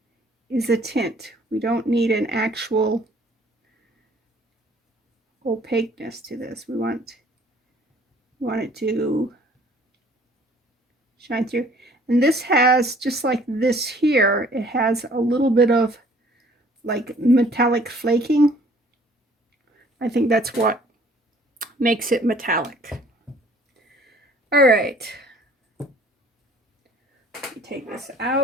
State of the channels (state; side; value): normal; both; correlation 0.56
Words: is a tint. We don't need an actual opaqueness to this. We want it to shine through. And this has, just like this here, it has a little bit of like metallic flaking. I think that's what makes it metallic. All right. Take this